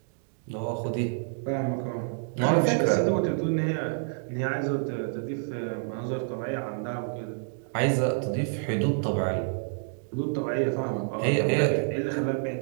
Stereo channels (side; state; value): left; silent; digital silence